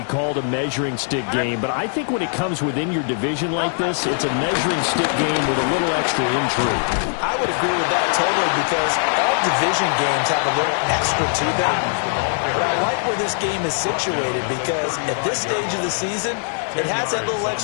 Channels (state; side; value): silent; right; 61 dB below the other